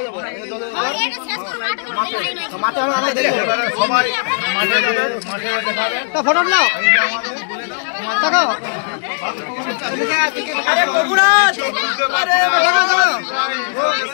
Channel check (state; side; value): silent; right; digital silence